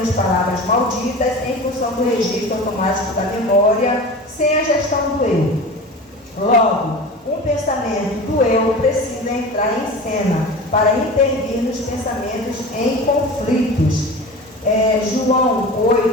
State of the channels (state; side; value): normal; both; correlation 0.33